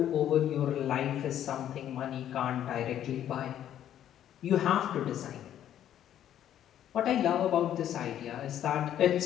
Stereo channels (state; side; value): quieter; right; 10.9 dB